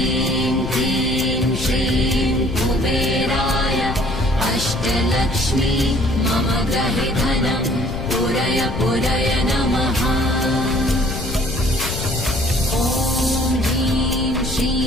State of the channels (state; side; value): noise; left; rumble, 6 dB below the sound